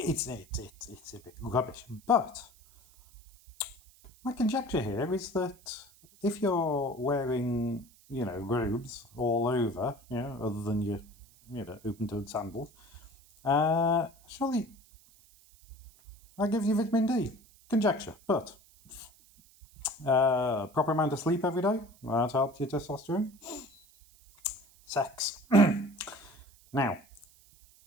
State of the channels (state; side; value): noise; right; hiss, 27 dB below the sound